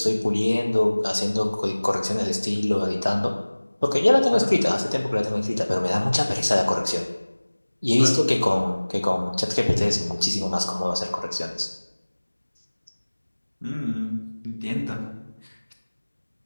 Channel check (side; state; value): both; inverted; correlation -1.00